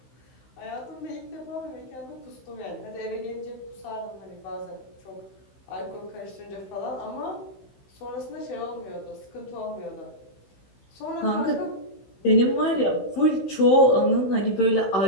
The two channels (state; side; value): late; right; 16 ms